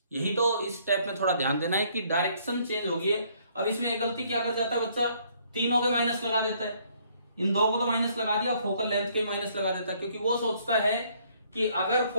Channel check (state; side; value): inverted; both; correlation -0.65